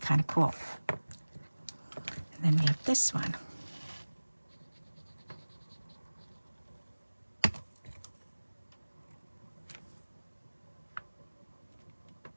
of cool. And then we have this one.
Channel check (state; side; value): inverted; both; correlation -1.00